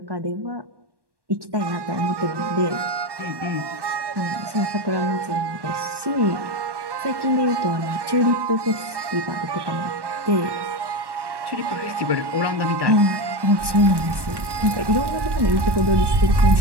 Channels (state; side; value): late; left; 1.1 ms